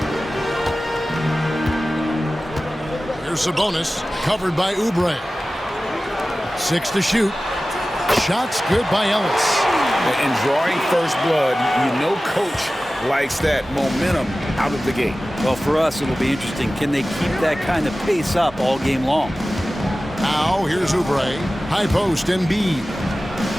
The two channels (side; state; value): both; normal; correlation 0.96